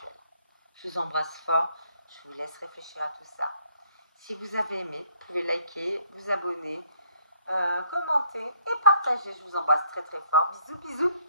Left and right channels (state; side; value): inverted; both; correlation -0.65